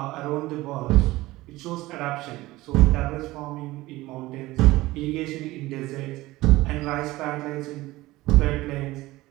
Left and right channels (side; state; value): left; quieter; 18.7 dB